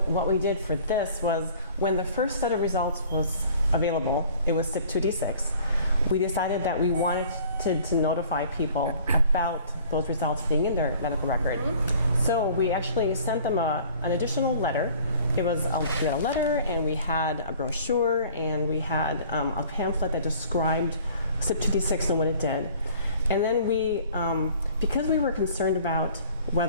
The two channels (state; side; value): inverted; both; correlation -0.51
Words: what we did for this was when the first set of results was available, it was CYP2D6, we decided that we wanted to notify people about those results being in their medical record. So we actually sent them an additional letter. We had a letter and we had a brochure and we had a pamphlet that described CYP2D6 and what it did. And then we, because we were concerned about